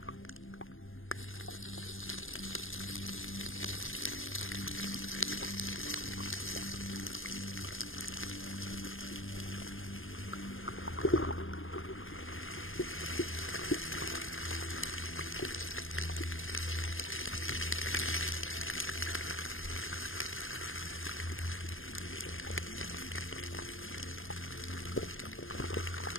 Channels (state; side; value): late; right; 0.59 ms